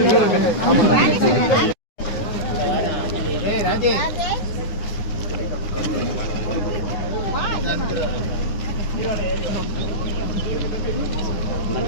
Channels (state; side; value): late; right; 9.7 ms